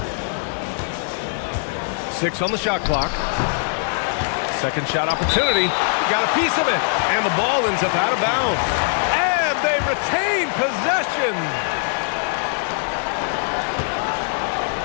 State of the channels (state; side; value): silent; right; 65 dB below the other